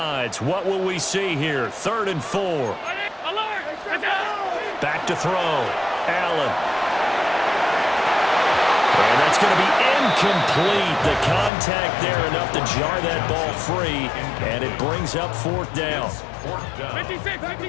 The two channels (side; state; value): right; drops out; at 11.5 s